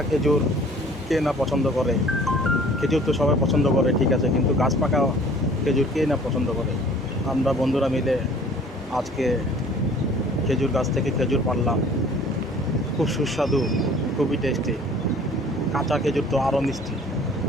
খেজুর কে না পছন্দ করে? খেজুর তো সবাই পছন্দ করে, ঠিক আছে, কিন্তু গাছ পাকা খেজুর কে না পছন্দ করে? আমরা বন্ধুরা মিলে আজকে খেজুর গাছ থেকে খেজুর পাড়লাম। খুব সুস্বাদু, খুবই টেস্টি। কাঁচা খেজুর তো আরও মিষ্টি।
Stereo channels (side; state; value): both; normal; correlation 0.51